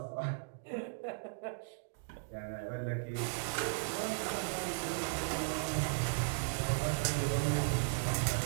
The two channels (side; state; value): left; quieter; 39.4 dB